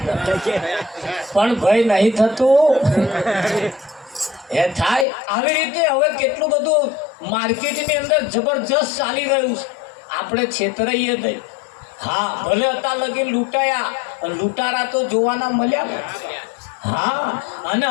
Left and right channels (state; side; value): drops out; right; at 5.1 s